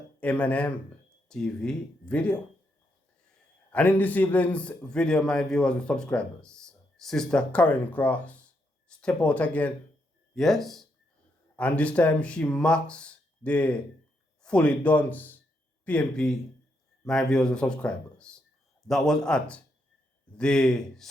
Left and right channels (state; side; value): normal; both; correlation 0.79